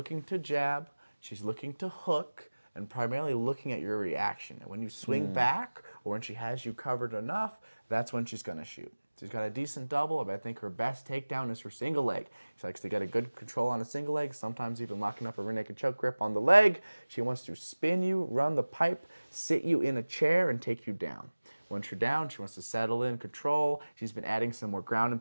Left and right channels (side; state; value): both; inverted; correlation -1.00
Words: to jab, she's looking to hook, and primarily looking at your reaction. And when you swing back, or when she has you covered enough, that's when she's gonna shoot. She's got a decent double, but I think her best takedown is her single leg. She likes to get a good control on a single leg, sometimes even locking up a rear naked choke grip on the leg. She wants to spin you, run the pipe, sit you in a chair, and take you down. Once you're down, she wants to settle in, control. She's been adding some more ground